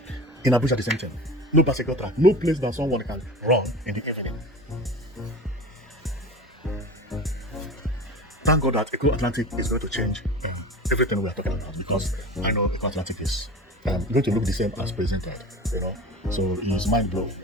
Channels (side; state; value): both; normal; correlation 0.34